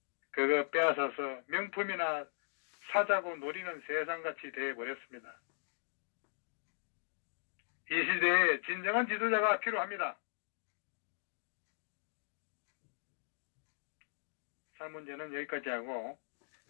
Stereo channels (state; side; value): silent; right; digital silence